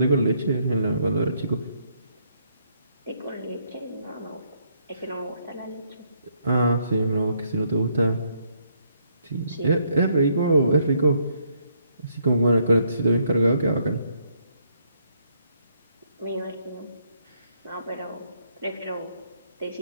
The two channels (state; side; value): inverted; both; correlation -0.71